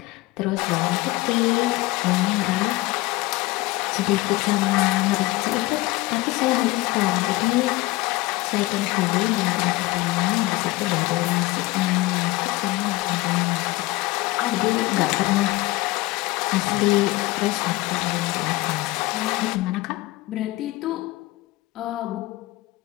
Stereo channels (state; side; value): quieter; right; 20.4 dB